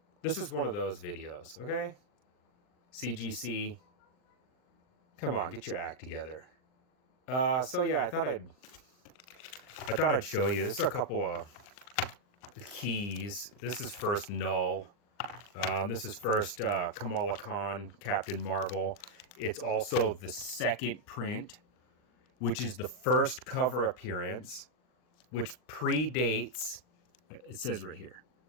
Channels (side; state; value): right; late; 39 ms